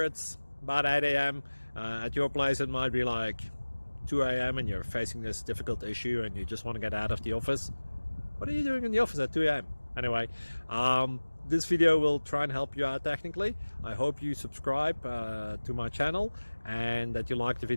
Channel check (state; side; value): inverted; both; correlation -1.00